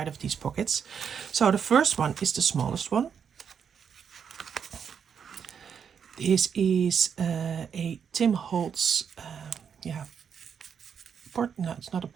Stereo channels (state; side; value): quieter; left; 7.3 dB